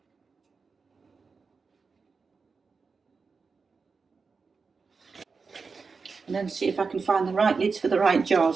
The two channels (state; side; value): quieter; left; 4.8 dB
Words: And then see if I can find the right lids for the right